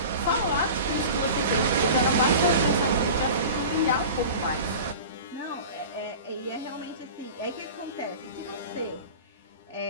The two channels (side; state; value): both; inverted; correlation -0.36